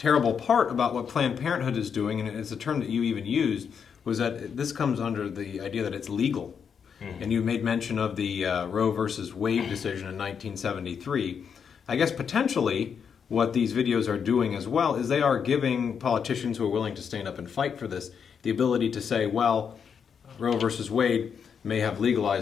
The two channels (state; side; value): quieter; right; 7.0 dB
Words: part about what Planned Parenthood is doing, and it's a term that you even used, was that this comes under the idea that it's legal. And you made mention of the Roe versus Wade decision in 1973. I guess potentially what these videos are doing as well is they are giving politicians who are willing to stand up and fight for this the ability to say, well, Roe versus Wade may have